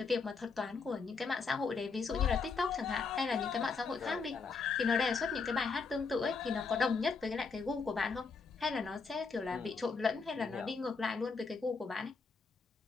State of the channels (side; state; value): right; quieter; 4.7 dB